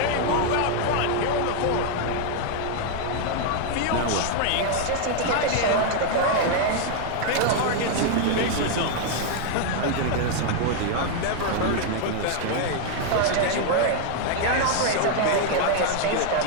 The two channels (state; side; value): different; both; correlation 0.00